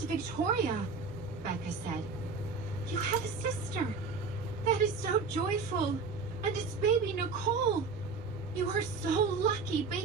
Victoria, Becca said. You have a sister. That is so joyful. And it's baby Nicole. You are so lucky.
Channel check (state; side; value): quieter; left; 4.6 dB